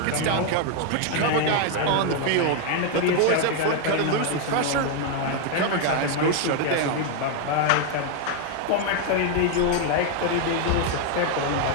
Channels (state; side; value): different; both; correlation 0.00